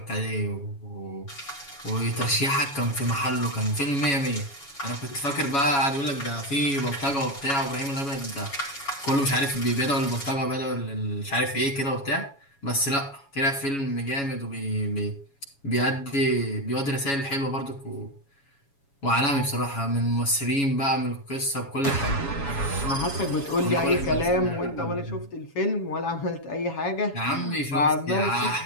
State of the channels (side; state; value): right; late; 7.2 ms